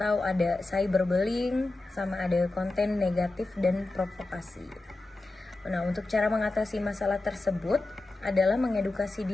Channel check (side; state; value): right; quieter; 3.0 dB